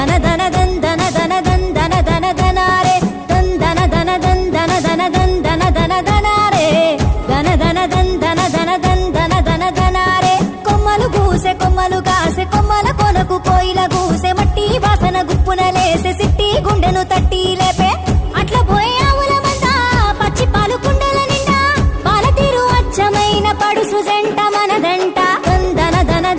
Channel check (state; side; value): identical; both; correlation 1.00